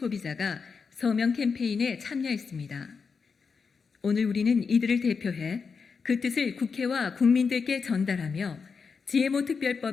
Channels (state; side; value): quieter; right; 5.4 dB